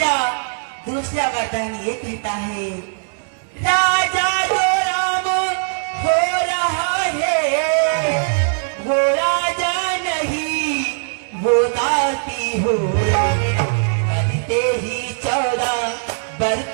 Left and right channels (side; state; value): left; silent; 66 dB below the other